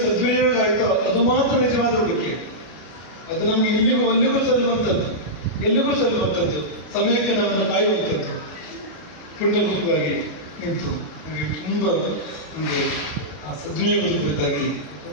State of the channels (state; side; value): late; right; 33 ms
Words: ಸದ್ವಿನಿಯೋಗ ಆಯಿತೋ ಅದು ಮಾತ್ರ ನಿಜವಾದ ಉಳಿಕೆ. ಅದು ನಮ್ಗೆ ಇಲ್ಲಿಗೂ ಅಲ್ಲಿಗೂ ಸಲ್ಲುವಂಥದ್ದು, ಎಲ್ಲಿಗೂ ಸಲ್ಲುವಂಥದ್ದು, ಸಮಯಕ್ಕೆ ನಮ್ಮನ್ನು ಕಾಯುವಂಥದ್ದು. ಪುಣ್ಯಭೂತವಾಗಿ ನಿಂತು ನಮಗೆ ತುಂಬ ನಮಗೆ ಆ ಸದ್ವಿನಿಯೋಗದ ಕುರಿತಾಗಿ